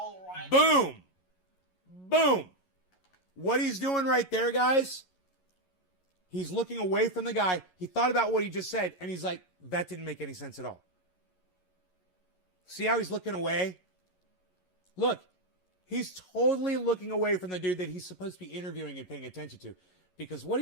right. Boom! Boom! What he's doing right there, guys, he's looking away from the guy. He thought about what he just said, and he's like, that didn't make any sense at all. See how he's looking away? Look, he's totally looking away from the dude that he's supposed to be interviewing and paying attention to. Because what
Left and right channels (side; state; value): right; late; 11 ms